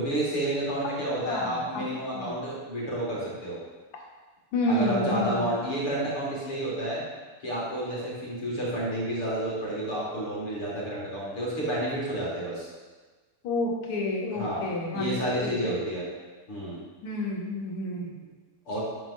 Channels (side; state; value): right; late; 6.8 ms